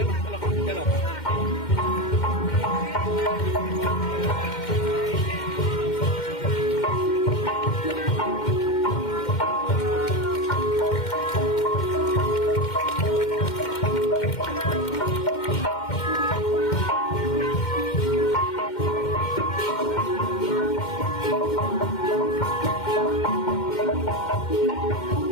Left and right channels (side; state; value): right; late; 2.1 ms